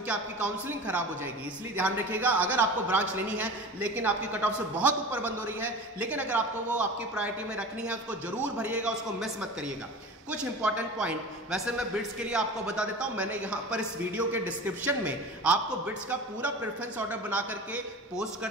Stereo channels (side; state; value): both; normal; correlation 0.35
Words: आपकी काउंसलिंग खराब हो जाएगी। इसलिए ध्यान रखिएगा, अगर आपको ब्रांच लेनी है लेकिन आपकी कट ऑफ से बहुत ऊपर बंद हो रही है, लेकिन अगर आपको वो आपकी प्रायोरिटी में रखनी है उसको जरूर भरिएगा, उसको मिस मत करिएगा। कुछ इंपॉर्टेंट पॉइंट वैसे मैं बिट्स के लिए आपको बता देता हूं, मैंने यहां पर इस वीडियो के डिस्क्रिप्शन में आपको बिट्स का पूरा प्रेफरेंस ऑर्डर बना करके पोस्ट